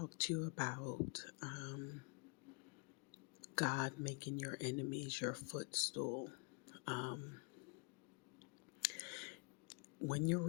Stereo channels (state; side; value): quieter; right; 35.2 dB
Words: to you about God making your enemies your footstool. Um, when you're